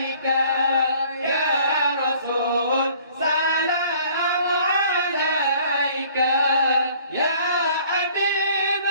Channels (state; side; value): inverted; both; correlation -0.54